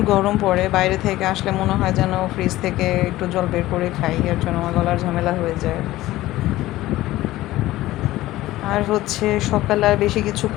গরম পড়ে, বাইরে থেকে আসলে মনে হয় যেন ফ্রিজ থেকে একটু জল বের করে খাই, এর জন্য আমার গলার ঝামেলা হয়ে যায়। আর হচ্ছে সকালে আর বেশি কিছু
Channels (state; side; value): quieter; right; 16.4 dB